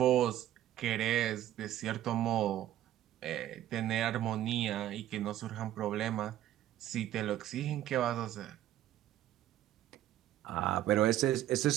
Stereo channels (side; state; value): left; quieter; 12.9 dB